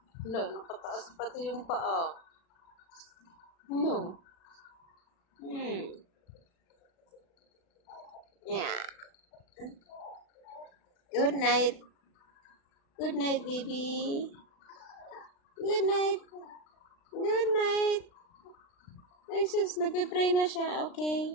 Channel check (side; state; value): right; late; 36 ms